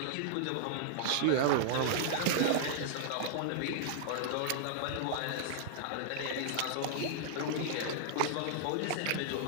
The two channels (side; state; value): both; different; correlation -0.01